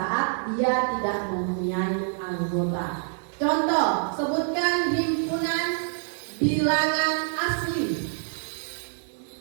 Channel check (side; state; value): left; silent; 55 dB below the other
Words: dia tidak mempunyai anggota. Contoh, sebutkan himpunan bilangan asli.